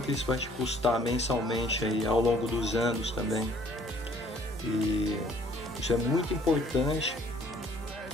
isso vai te custar mensalmente aí ao longo dos anos também. E isso é muito importante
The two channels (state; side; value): normal; both; correlation 0.59